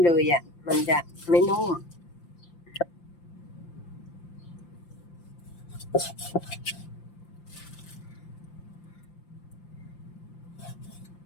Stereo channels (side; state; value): right; late; 5.8 ms